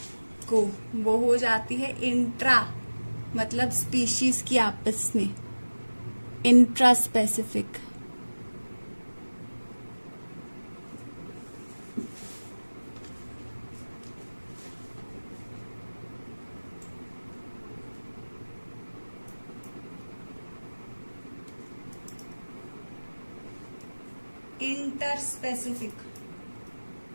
को, वो हो जाती है इंट्रा, मतलब स्पीशीज की आपस में, intraspecific. Interspecific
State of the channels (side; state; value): both; inverted; correlation -1.00